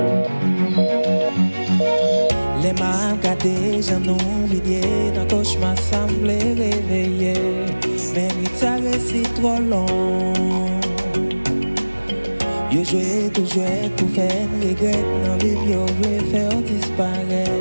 mains gâtées, j'en oublié, dans cauchemar semblait réveiller. Mais ça reste trop long. Yo joué, tout joué, pour faire regret. Dans vie, yo voulait faire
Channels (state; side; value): inverted; both; correlation -1.00